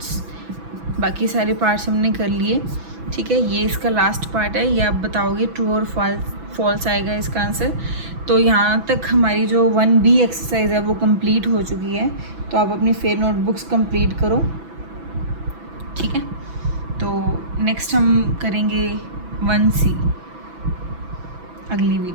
बाकी सारे पार्ट्स हमने कर लिए। ठीक है, ये इसका लास्ट पार्ट है, ये आप बताओगे ट्रू और फॉल्स आएगा इसका आंसर। तो यहाँ तक हमारी जो 1B एक्सरसाइज है वो कंप्लीट हो चुकी है, तो आप अपनी फेयर नोटबुक्स कंप्लीट करो। ठीक है, तो नेक्स्ट हम करेंगे 1C अगली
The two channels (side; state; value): left; late; 6.0 ms